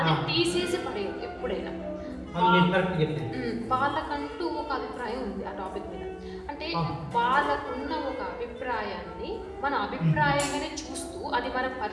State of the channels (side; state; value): both; identical; correlation 1.00